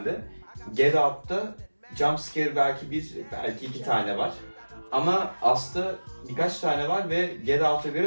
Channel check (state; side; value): inverted; both; correlation -1.00